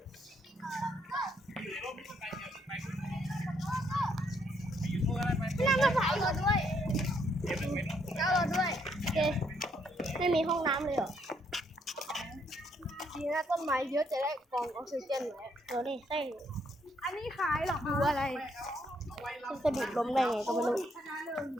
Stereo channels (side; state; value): both; normal; correlation 0.72